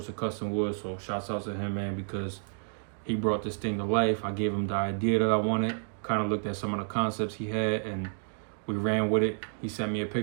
of custom wood. So shouts out to him, man, because he brought this thing to life. I gave him the idea that I wanted, kind of looked at some of the concepts he had, and we ran with it. He sent me a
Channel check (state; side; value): silent; left; 58 dB below the other